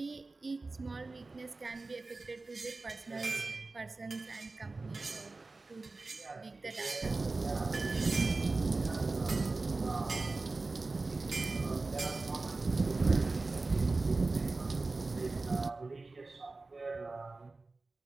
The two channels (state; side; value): quieter; left; 3.5 dB